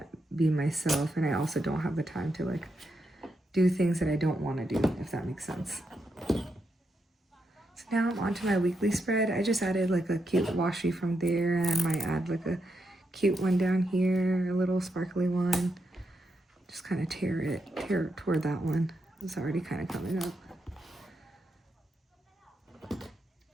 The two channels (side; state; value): both; normal; correlation 0.83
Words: be myself, and I also don't have the time to like do things that I don't want to do, if that makes sense. So now I'm on to my weekly spread. I just added like a cute washi from there, and I might add like a cute one down here, a little sparkly one. Just kind of tear it toward that one. It's already kind of coming up.